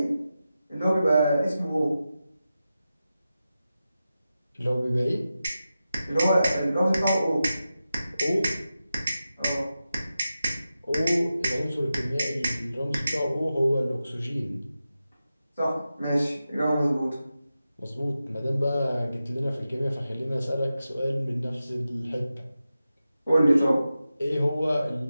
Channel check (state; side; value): inverted; both; correlation -0.92